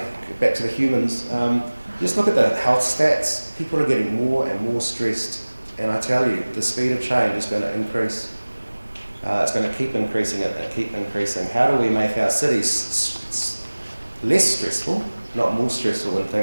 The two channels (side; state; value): both; inverted; correlation -1.00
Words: Back to the humans. Just look at the health stats. People are getting more and more stressed. And I tell you, the speed of change is going to increase. It's going to keep increasing and keep increasing. How do we make our cities less stressful, not more stressful when